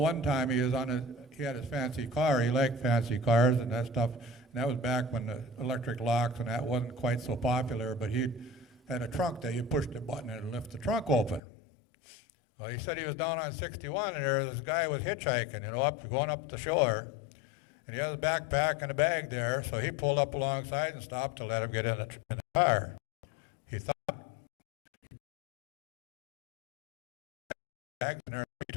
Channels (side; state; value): right; drops out; at 11.4 s